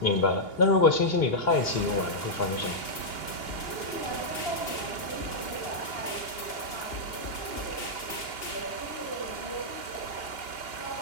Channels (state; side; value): late; right; 2.8 ms